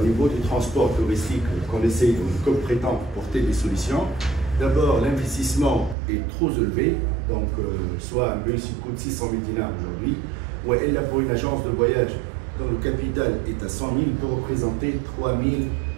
niveau du transport touristique qu'on essaye, comme prétend, porter des solutions. D'abord, l'investissement est trop élevé. Donc soit un bus qui coûte 600 000 dinars aujourd'hui, ou elle a pour une agence de voyage dont le capital est à 100 000 peut représenter 3 000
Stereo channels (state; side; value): drops out; left; at 6.0 s